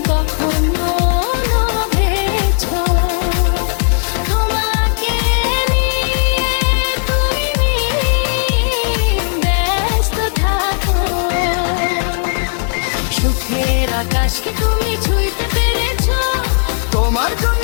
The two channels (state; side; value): silent; right; 56 dB below the other